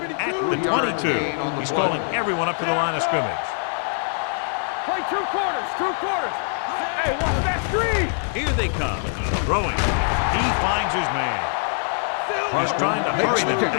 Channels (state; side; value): silent; right; 63 dB below the other